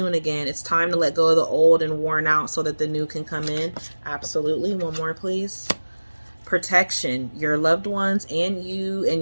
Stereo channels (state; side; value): inverted; both; correlation -1.00